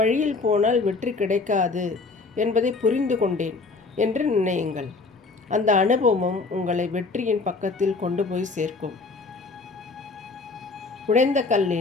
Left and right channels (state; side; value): quieter; right; 3.9 dB